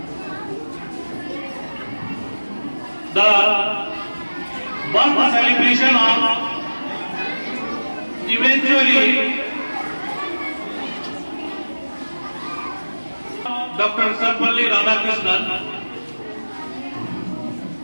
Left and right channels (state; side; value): inverted; both; correlation -1.00